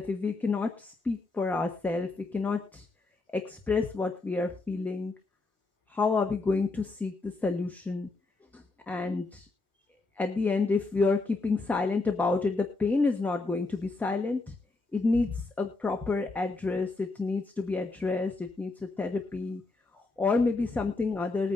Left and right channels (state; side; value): quieter; right; 3.5 dB